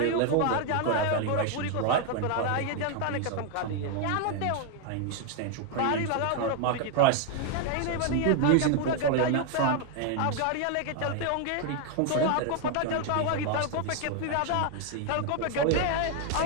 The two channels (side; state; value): both; different; correlation 0.01